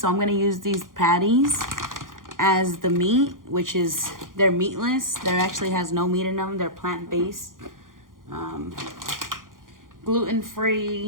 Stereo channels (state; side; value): late; left; 0.90 ms